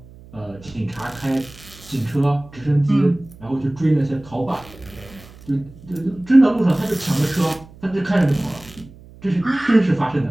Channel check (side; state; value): right; noise; hum, 21 dB below the sound